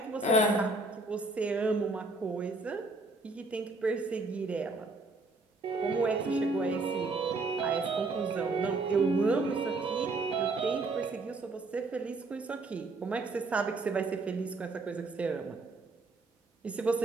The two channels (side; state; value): left; quieter; 3.3 dB